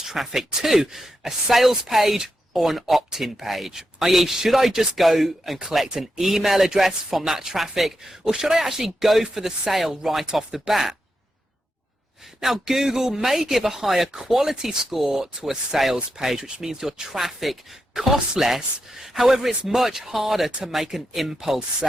traffic to? A sales page or an opt-in page? I.e., should I just go and collect an email address from that traffic, or should I actually go for the sale right off the bat? Now, Google may give a higher quality score to a sales page, which means your traffic costs less. However, it's much harder to make an impulse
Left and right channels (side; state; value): both; normal; correlation 0.86